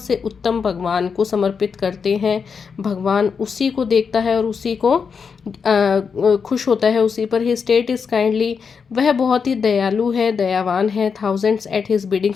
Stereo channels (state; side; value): quieter; right; 5.9 dB